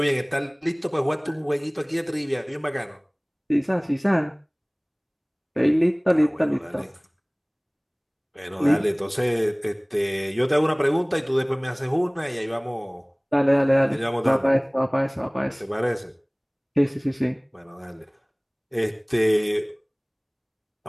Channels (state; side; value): identical; both; correlation 1.00